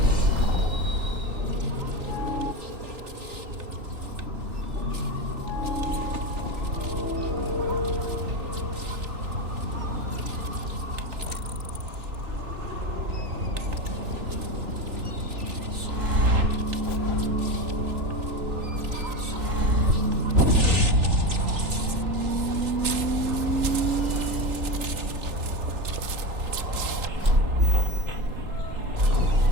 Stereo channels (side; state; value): left; late; 3.4 ms